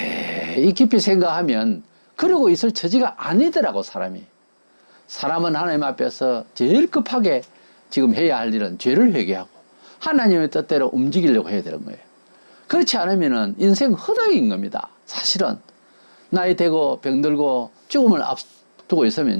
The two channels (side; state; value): both; inverted; correlation -1.00